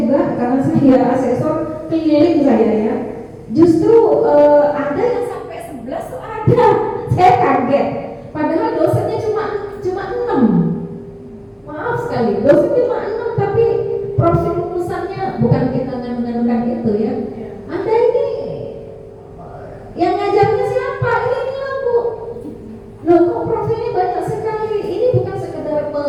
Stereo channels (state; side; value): identical; both; correlation 1.00